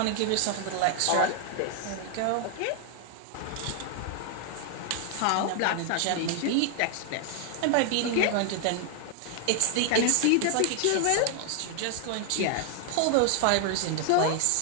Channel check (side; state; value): both; different; correlation 0.00